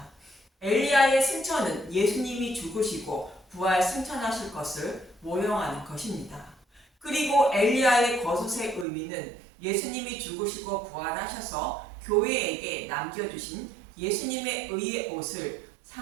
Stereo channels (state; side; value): drops out; left; at 8.8 s